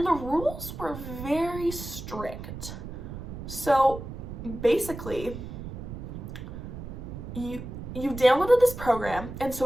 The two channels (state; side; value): noise; right; rumble, 9 dB below the sound